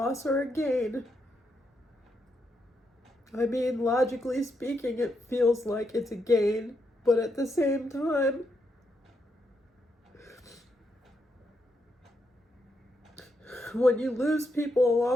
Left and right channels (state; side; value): normal; both; correlation 0.81